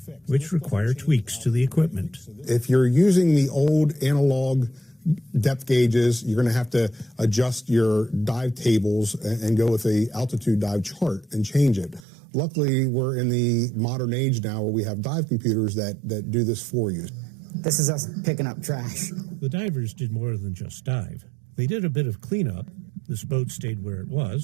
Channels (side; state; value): left; drops out; at 12.0 s